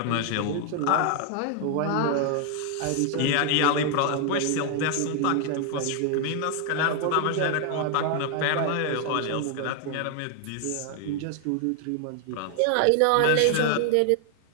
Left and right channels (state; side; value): different; both; correlation 0.00